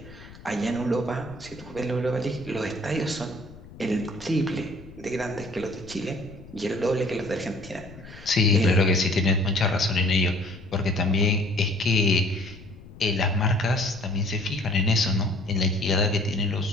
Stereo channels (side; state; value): left; noise; rumble, 18 dB below the sound